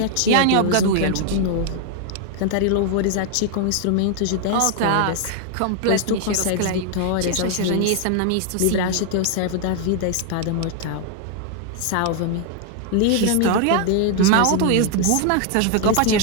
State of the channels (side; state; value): both; different; correlation 0.00